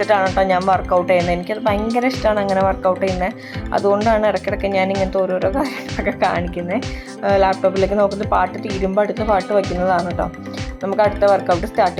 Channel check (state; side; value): identical; both; correlation 1.00